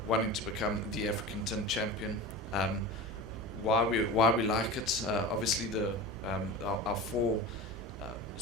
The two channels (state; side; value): normal; both; correlation 0.31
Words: wanting to become the African Tin Champion. Why we like it? Obviously, our four